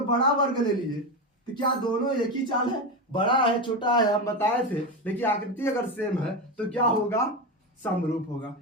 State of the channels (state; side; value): normal; both; correlation 0.16